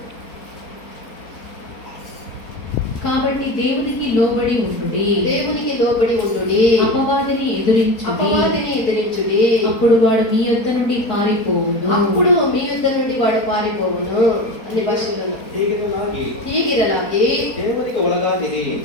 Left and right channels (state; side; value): late; right; 4.2 ms